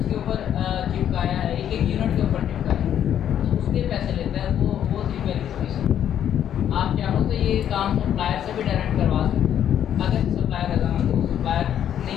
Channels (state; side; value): quieter; right; 10.0 dB